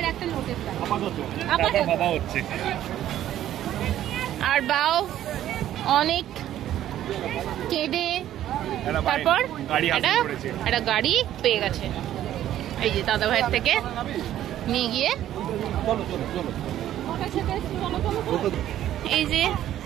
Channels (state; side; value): quieter; left; 12.2 dB